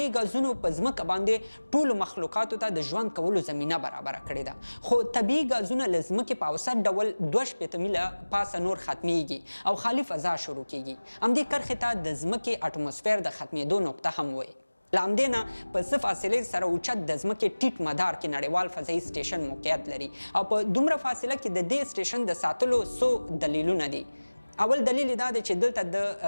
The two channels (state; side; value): inverted; both; correlation -1.00